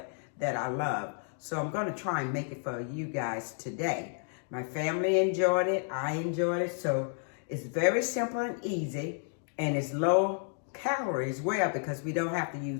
that I love. So I'm going to try and make it for you guys today. My family enjoyed it. I enjoyed it. So it's very simple and easy, and it's low calorie as well because we don't have to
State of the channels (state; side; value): silent; right; 57 dB below the other